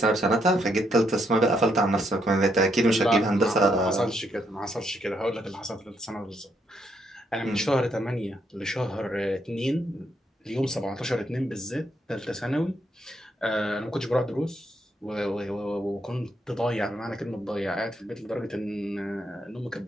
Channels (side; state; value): both; normal; correlation 0.75